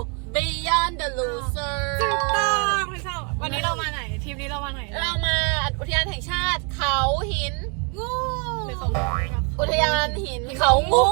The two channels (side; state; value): left; quieter; 36.1 dB